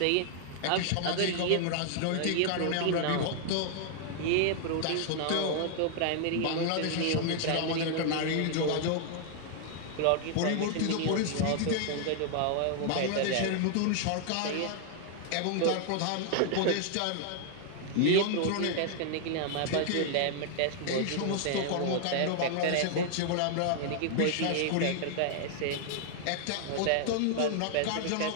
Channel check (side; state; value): both; different; correlation 0.00